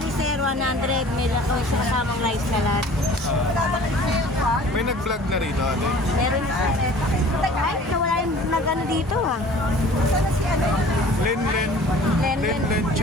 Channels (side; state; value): both; normal; correlation 0.47